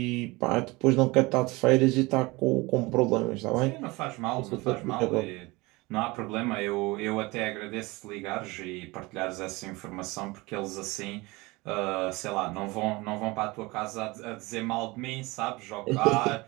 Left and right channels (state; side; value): quieter; left; 23.2 dB